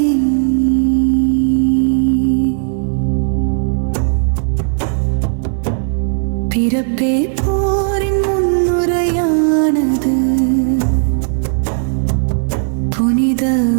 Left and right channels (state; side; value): silent; left; digital silence